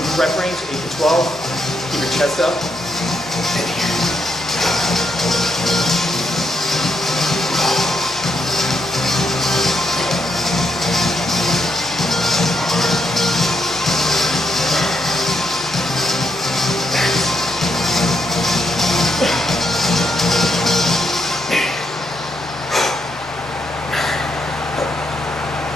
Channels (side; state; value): both; normal; correlation 0.79